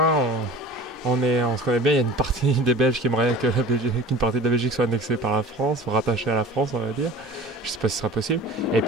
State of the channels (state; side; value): normal; both; correlation 0.39